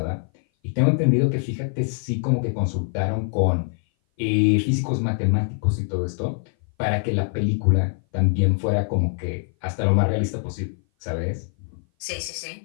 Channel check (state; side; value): silent; right; 58 dB below the other